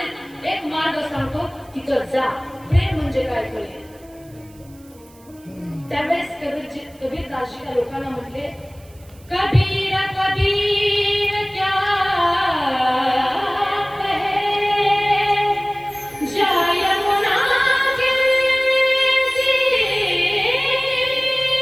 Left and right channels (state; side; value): noise; right; hiss, 27 dB below the sound